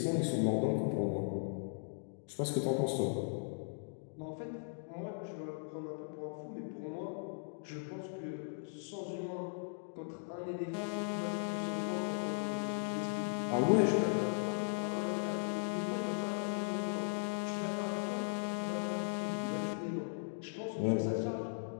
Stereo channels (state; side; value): silent; right; digital silence